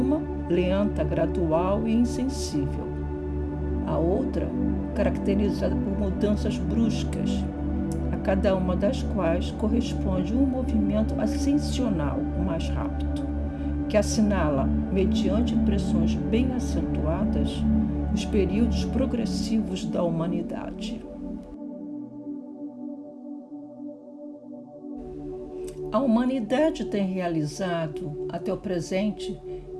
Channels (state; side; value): identical; both; correlation 1.00